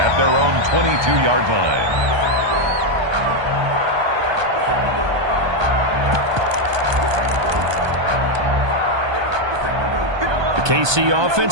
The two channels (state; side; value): late; left; 1.2 ms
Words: their own 22-yard line. KC